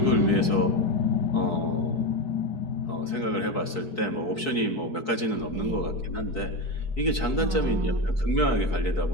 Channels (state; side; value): late; right; 4.6 ms